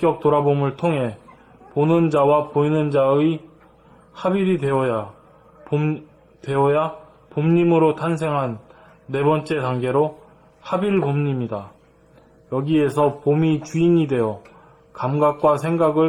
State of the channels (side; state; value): both; identical; correlation 1.00